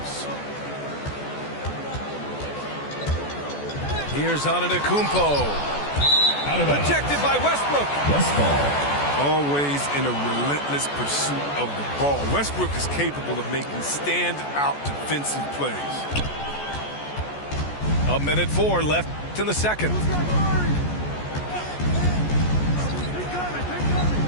Here's Antetokounmpo. Rejected by Westbrook. Always in a relentless pursuit of the ball. Westbrook is capable of making stand-out defensive plays. 1:04 left in the second.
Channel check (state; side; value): late; right; 14 ms